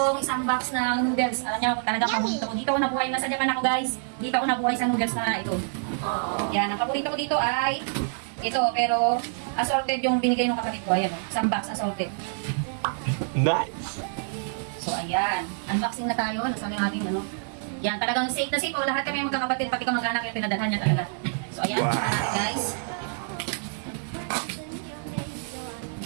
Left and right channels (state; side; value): silent; left; digital silence